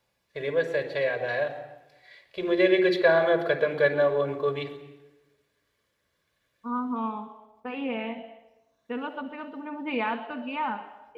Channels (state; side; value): identical; both; correlation 1.00